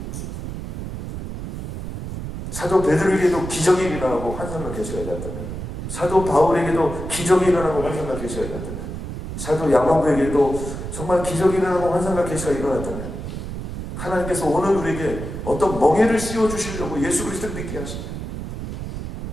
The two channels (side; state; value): right; noise; rumble, 7 dB below the sound